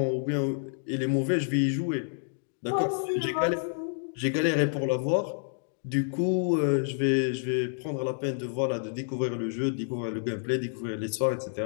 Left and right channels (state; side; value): silent; right; digital silence